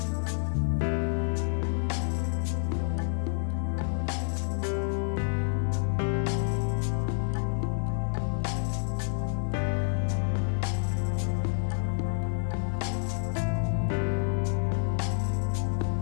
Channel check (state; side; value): silent; right; 59 dB below the other